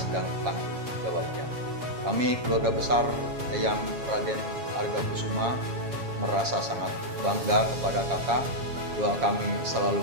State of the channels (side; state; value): left; late; 7.3 ms